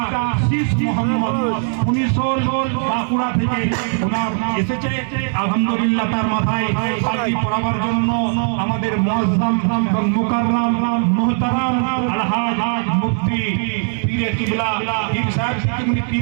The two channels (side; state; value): left; silent; 56 dB below the other